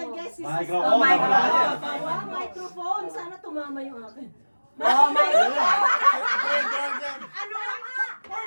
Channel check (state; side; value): inverted; both; correlation -1.00